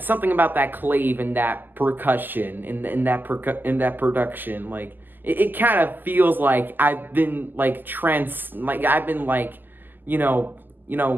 something about that clave and that percussion in that production, like it kind of feels like I've been like I've been like,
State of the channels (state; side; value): late; left; 0.089 ms